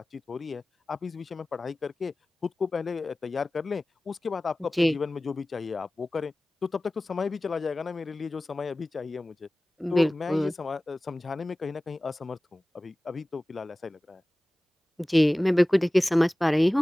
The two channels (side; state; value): both; normal; correlation 0.98